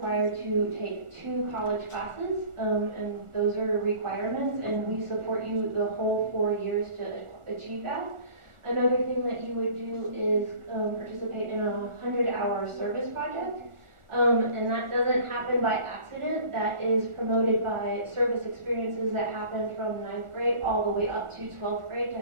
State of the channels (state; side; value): late; left; 1.4 ms